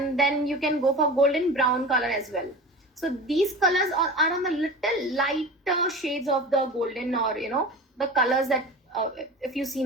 then you can go for golden brown color as well. So these colors are on the little lighter shades of the golden, or the colors that if you see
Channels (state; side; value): normal; both; correlation 0.32